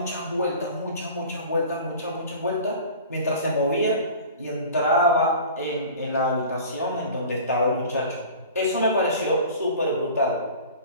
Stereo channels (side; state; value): both; inverted; correlation -0.41